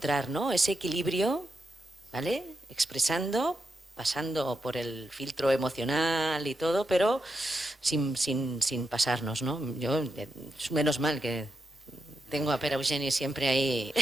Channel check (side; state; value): both; normal; correlation 0.86